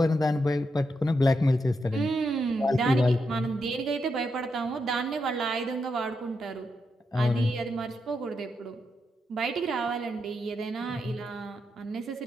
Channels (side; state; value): both; normal; correlation 0.84